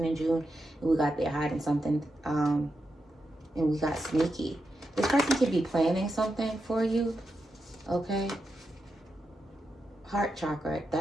in June, and we got they're hiding something. And we got sneaky. This person could be planning something for you. Okay. Heart chakra.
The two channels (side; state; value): both; normal; correlation 0.87